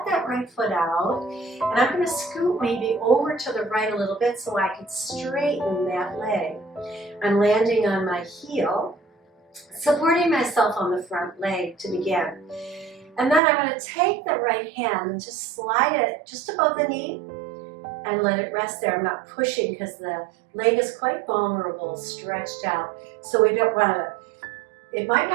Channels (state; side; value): drops out; left; at 13.4 s